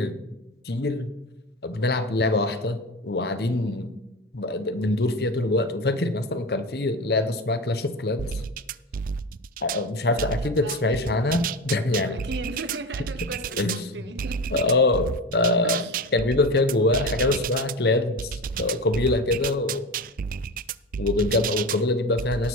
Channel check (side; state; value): both; normal; correlation 0.26